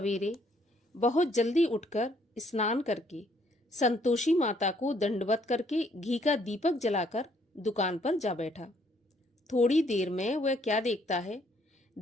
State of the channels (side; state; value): both; normal; correlation 0.66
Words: बहुत जल्दी उठकर स्नान करके संतोषी माता को दंडवत करके घी का दीपक जलाकर दुकान पर जा बैठा। थोड़ी देर में वह क्या देखता है,